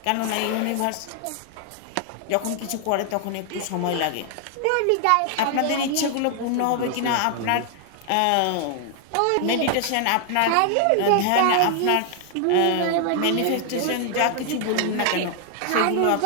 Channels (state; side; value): different; both; correlation 0.00